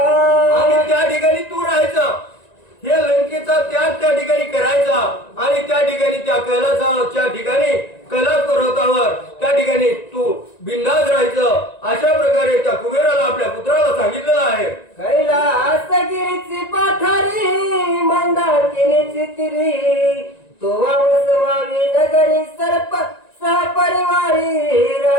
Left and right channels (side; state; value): right; late; 1.9 ms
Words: त्या ठिकाणी तू राहायचं हे लंकेचा त्याग त्या ठिकाणी करायचा आणि त्या ठिकाणी त्या कैलासाच्या ठिकाणी कैलास पर्वतावर त्या ठिकाणी तू बिंदास राहायचं अशा प्रकारे त्या कुबेराला आपल्या पुत्राला सांगितलेलं आहे. कैलासगिरीची पाठारी मंदाकिनीची तिरी तो वसवावी नगरी सर्प सहपरिवारी